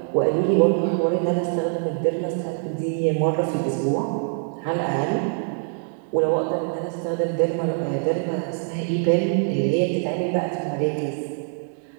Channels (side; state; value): left; silent; 63 dB below the other